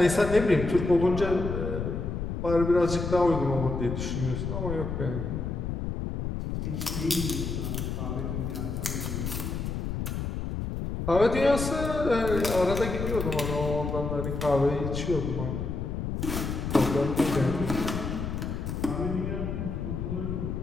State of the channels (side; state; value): left; noise; rumble, 3 dB below the sound